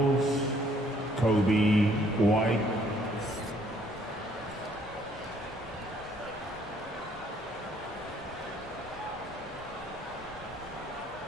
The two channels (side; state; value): both; normal; correlation 0.64